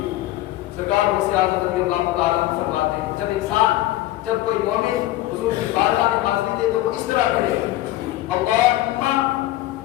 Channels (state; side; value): quieter; right; 15.9 dB